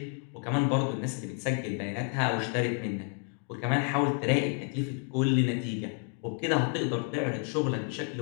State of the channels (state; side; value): quieter; right; 37.7 dB